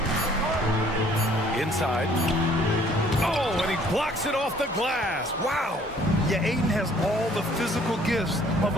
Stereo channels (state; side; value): normal; both; correlation 0.58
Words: Inside. Oh, and he blocks it off the glass. Wow. Yeah, Ayton has all the physical gifts of